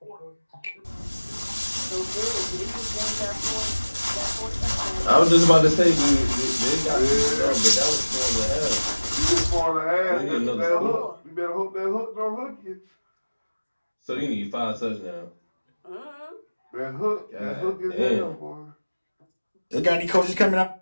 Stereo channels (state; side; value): inverted; both; correlation -1.00